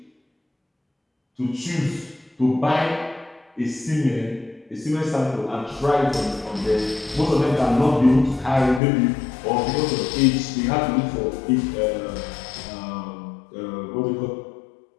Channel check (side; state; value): right; drops out; at 8.8 s